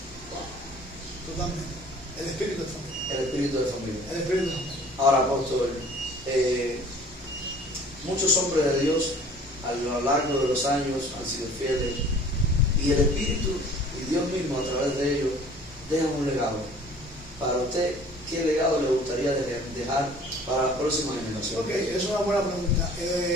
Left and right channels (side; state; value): both; normal; correlation 0.50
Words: Totalmente. El espíritu de familia. El espíritu de familia. El espíritu de familia. Ahora, apóstol, muchos hombres de Dios a lo largo de los años han sido fieles y el Espíritu y Dios mismo a través de ellos dejan un legado. Para usted, ¿qué legado le gustaría dejar para las próximas generaciones? Ok, es una buena pregunta.